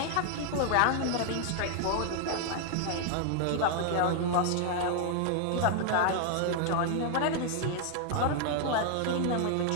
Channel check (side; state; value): both; different; correlation 0.00